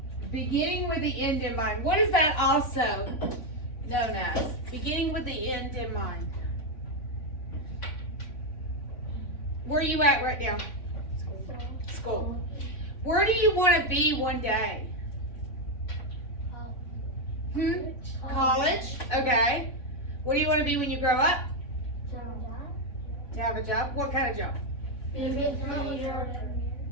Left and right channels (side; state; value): right; late; 3.6 ms